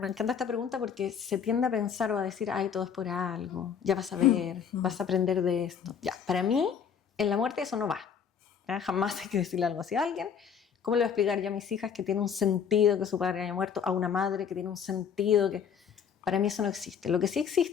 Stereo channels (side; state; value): right; quieter; 7.4 dB